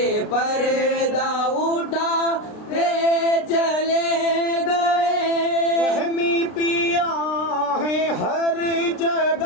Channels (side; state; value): right; late; 33 ms